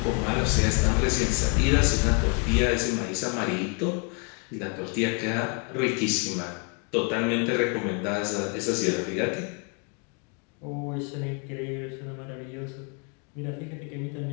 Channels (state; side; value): quieter; right; 35.5 dB